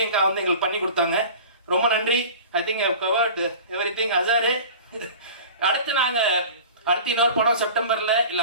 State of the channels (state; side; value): inverted; both; correlation -0.39